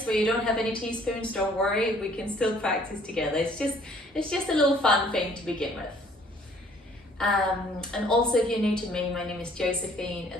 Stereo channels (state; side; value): normal; both; correlation 0.59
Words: where you don't have any teaspoons, don't worry, we can still practice together. It's just a little fun thing to begin with. And also, if you're new to me, my name is Josephine.